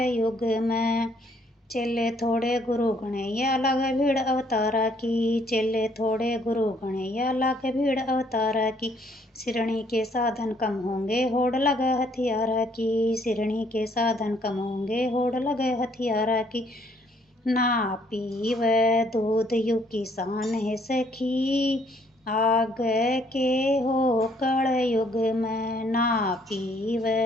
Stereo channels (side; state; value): both; normal; correlation 0.65